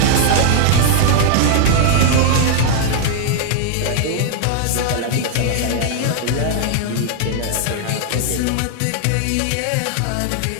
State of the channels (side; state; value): both; different; correlation 0.00